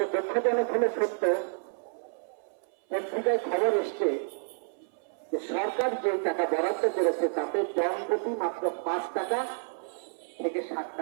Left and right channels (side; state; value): left; silent; 58 dB below the other